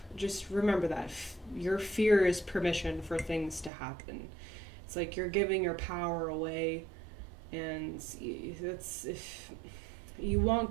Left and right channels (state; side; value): drops out; left; at 3.7 s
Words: Just remember that. Your fear is permission for things to happen. It's like you're giving your power away, and that's, if you want